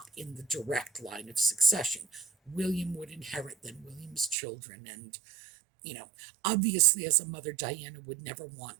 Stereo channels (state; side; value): drops out; left; at 4.4 s